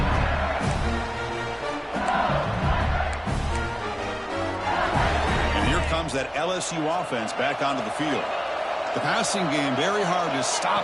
And here comes that LSU offense back onto the field. The passing game very hard to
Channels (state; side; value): identical; both; correlation 1.00